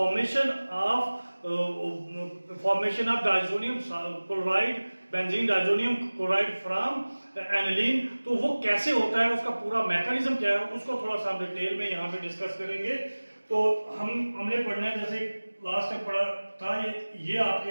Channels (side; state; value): both; inverted; correlation -1.00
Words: of diazonium chloride, benzene diazonium chloride from aniline, तो वो कैसे होता है, उसका पूरा मैकेनिज्म क्या है, उसको थोड़ा सा हम डिटेल में यहाँ पे डिस्कस करेंगे। तो हमने पढ़ना है, जैसे लास्ट टाइम पढ़ा था, ये आपके